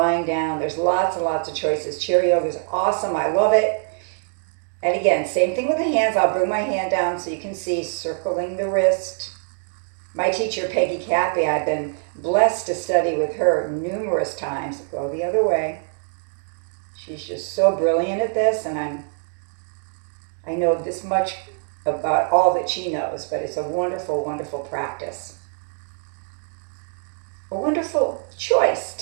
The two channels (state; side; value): silent; left; 63 dB below the other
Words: down, there's lots and lots of choices. Chair yoga is awesome, I love it. And again, same thing with the hands. I'll bring my hand down so you can see, circling the wrist. My teacher, Peggy Cappy, I've been blessed to study with her numerous times. Go the other way. She's just so brilliant at this, and I know this much about all that she knows, but it's a wonderful, wonderful practice. A wonderful choice